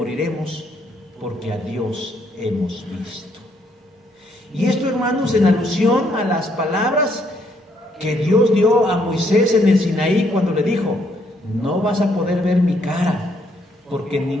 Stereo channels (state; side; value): normal; both; correlation 0.71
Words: porque a Dios hemos visto. Y esto, hermanos, en alusión a las palabras que Dios dio a Moisés en el Sinaí cuando le dijo, no vas a poder ver mi cara, porque